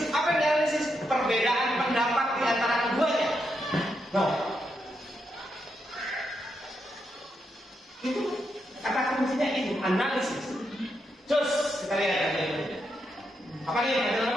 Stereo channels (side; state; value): both; normal; correlation 0.82